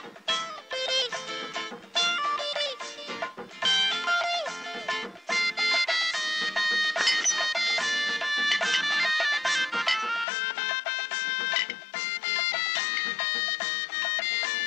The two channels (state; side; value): drops out; right; at 10.2 s